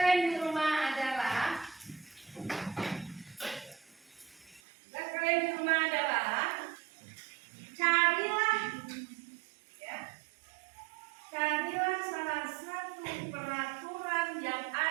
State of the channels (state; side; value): drops out; left; at 4.6 s